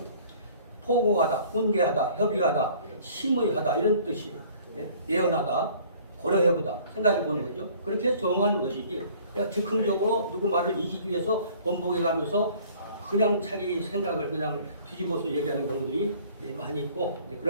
포고하다, 훈계하다, 협의하다, 심의하다 이런 뜻이에요. 네? 예언하다, 고려해보다, 생각해보는 거죠. 그렇게 정하는 것이지 내가 즉흥적으로 누구 말을 이기기 위해서 번복해가면서 그냥 자기 생각을 그냥 뒤집어서 얘기하는 경우들이 많이 있고,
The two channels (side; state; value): both; inverted; correlation -0.53